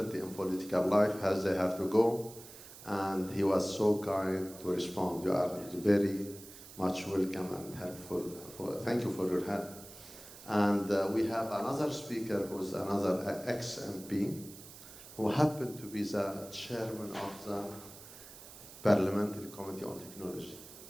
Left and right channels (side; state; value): right; noise; hiss, 17 dB below the sound